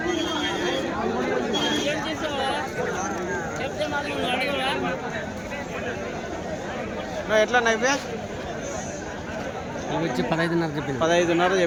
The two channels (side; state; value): both; identical; correlation 1.00